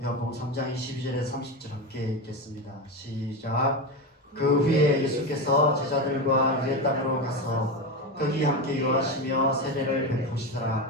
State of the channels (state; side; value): normal; both; correlation 0.18